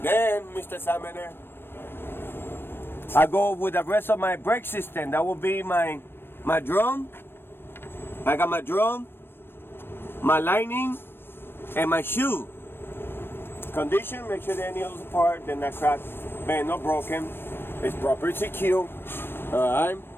Then, Mr. Examiner, I go with the rest of my brake system. That will be my drum. I got my drum, my lining, and my shoe. Condition, make sure that any of those parts, they're not cracked, bent, or broken. It's properly secure. Alright.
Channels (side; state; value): right; late; 0.10 ms